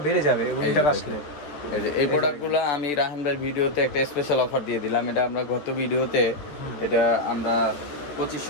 বেড়ে যাবে উইন্টার আসলে। এই প্রোডাক্টগুলো আমি রাহান ভাইয়ের ভিডিওতে একটা স্পেশাল অফার দিয়ে দিলাম। এটা আমরা গত ভিডিওতে এটা আমরা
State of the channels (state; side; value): late; right; 13 ms